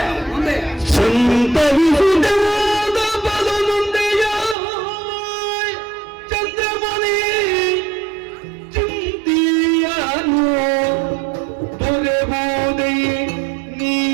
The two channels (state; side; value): drops out; left; at 4.5 s